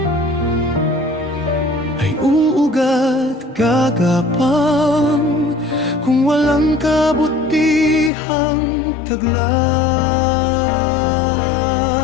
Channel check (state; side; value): drops out; right; at 8.1 s